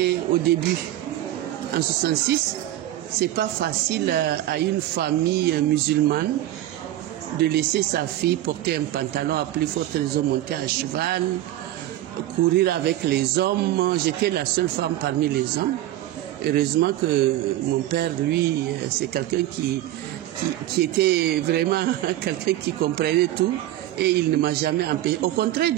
au début. En 1966, c'est pas facile à une famille musulmane de laisser sa fille porter un pantalon à plus forte raison, monter à cheval, courir avec les hommes. J'étais la seule femme parmi les hommes. Heureusement que mon père, lui, c'est quelqu'un qui était vraiment quelqu'un qui comprenait tout et il ne m'a jamais empêché. Au contraire,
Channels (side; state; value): left; quieter; 14.1 dB